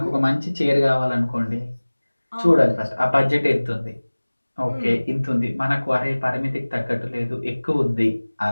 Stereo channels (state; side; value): inverted; both; correlation -1.00